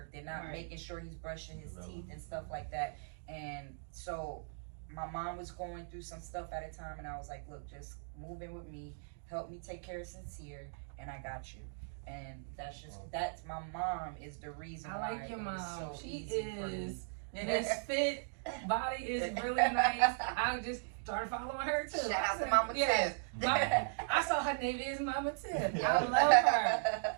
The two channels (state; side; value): silent; left; digital silence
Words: They're not making sure he's brushing his teeth and stuff like that. And so my mom was going through some stuff at a time, and I was like, look, just move in with me, help me take care of Sincere, and I got you. And that's my mom is the reason why. I like your mom. So she is misfit. Body is really nice. I just started following her too. Shout out to Mama Tip. I saw her name is Mama Tip.